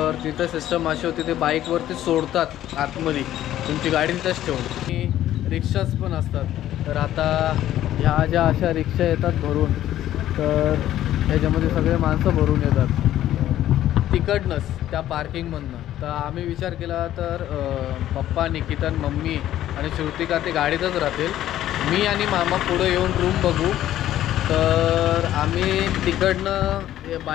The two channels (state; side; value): quieter; right; 12.7 dB